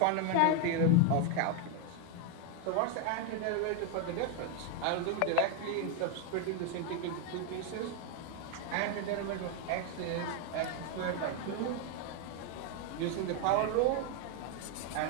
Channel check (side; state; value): both; different; correlation 0.01